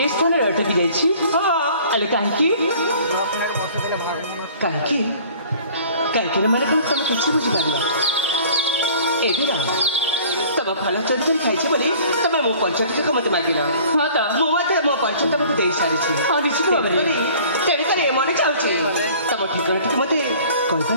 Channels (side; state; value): both; inverted; correlation -0.50